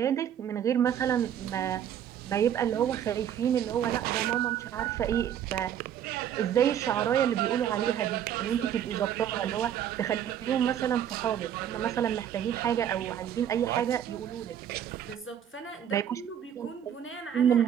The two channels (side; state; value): left; quieter; 9.7 dB